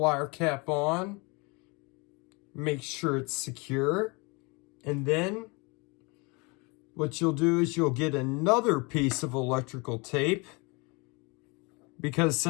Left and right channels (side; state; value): right; quieter; 28.9 dB